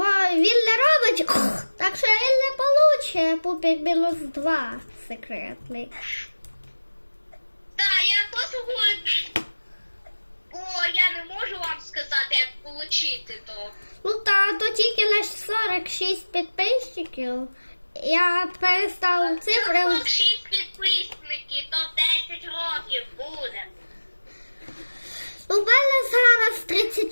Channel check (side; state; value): both; inverted; correlation -1.00